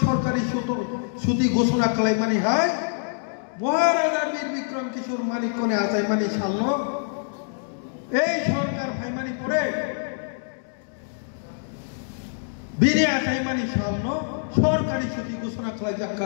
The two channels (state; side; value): silent; right; digital silence